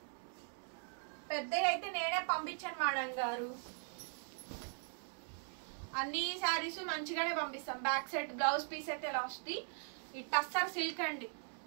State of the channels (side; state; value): left; silent; 51 dB below the other